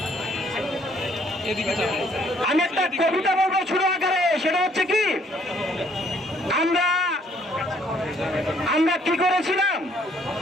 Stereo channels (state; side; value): normal; both; correlation 0.64